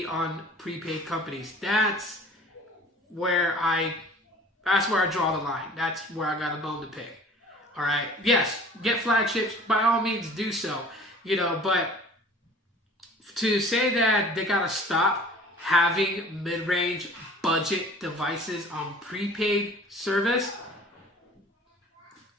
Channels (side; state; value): both; normal; correlation 0.47